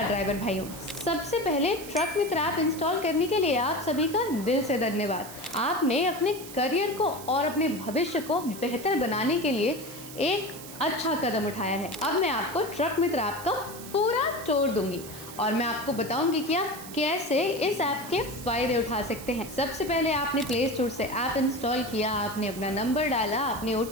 ड्राइवर भाइयों, सबसे पहले ट्रक मित्र ऐप इंस्टॉल करने के लिए आप सभी का दिल से धन्यवाद। आपने अपने करियर को और अपने भविष्य को बेहतर बनाने के लिए एक अच्छा कदम उठाया है। अब मैं आपको ट्रक मित्र ऐप का पूरा टूर दूंगी और मैं आपको बताऊंगी कि आप कैसे इस ऐप के फायदे उठा सकते हैं। सबसे पहले आपने प्ले स्टोर से ऐप इंस्टॉल किया, आपने अपना नंबर डाला, आपने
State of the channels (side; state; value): right; noise; hiss, 14 dB below the sound